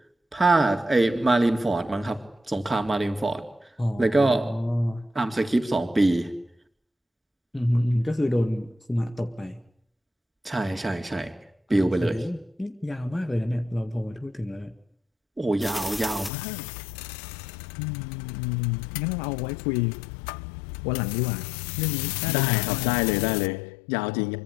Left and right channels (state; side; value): drops out; right; at 16.3 s